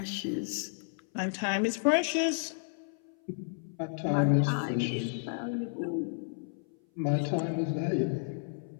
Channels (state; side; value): silent; right; 56 dB below the other